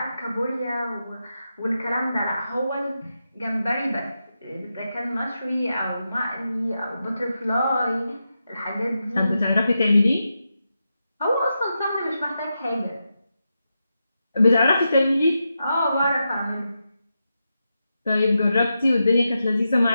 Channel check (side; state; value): both; inverted; correlation -0.88